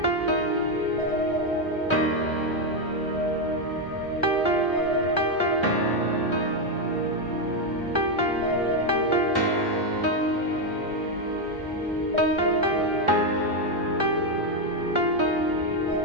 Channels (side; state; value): both; normal; correlation 0.05